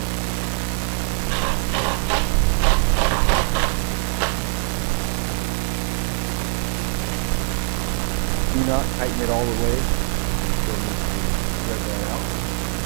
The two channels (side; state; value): left; silent; 60 dB below the other